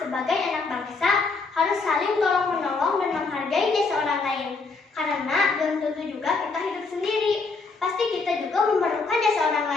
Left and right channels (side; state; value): right; quieter; 4.1 dB